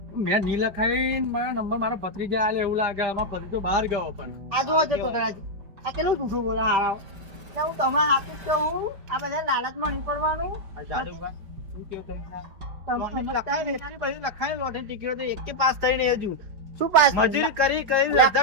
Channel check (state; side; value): late; left; 5.2 ms